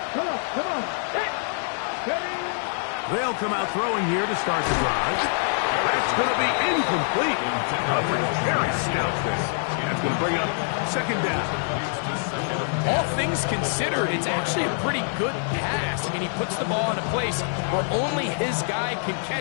Come on. They'll come out throwing here to start the drive. That's going to be incomplete. Coverage very stout there. That's going to bring up second down. All things considered, it's actually a pretty good pass. I mean, he puts the ball in a place where only his guy can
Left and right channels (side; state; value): right; silent; 62 dB below the other